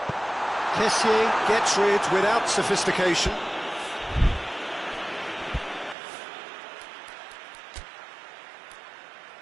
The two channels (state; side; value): drops out; left; at 6.0 s